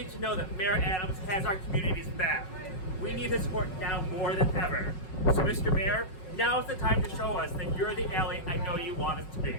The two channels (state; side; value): late; right; 5.4 ms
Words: to know that Mayor Adams has our community's back. We need his support now more than ever. So Mr. Mayor, now is the time to show us that you're the ally I know you want us to be.